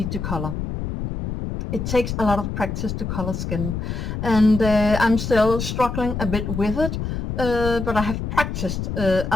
to color. It takes a lot of practice to color skin, and I'm still struggling a bit with it, but I have practiced a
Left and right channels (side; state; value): left; noise; rumble, 4 dB below the sound